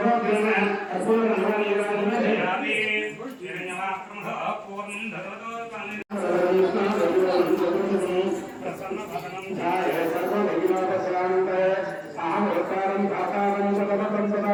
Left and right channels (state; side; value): identical; both; correlation 1.00